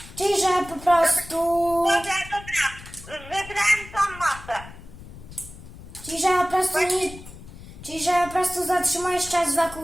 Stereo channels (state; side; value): noise; left; rumble, 16 dB below the sound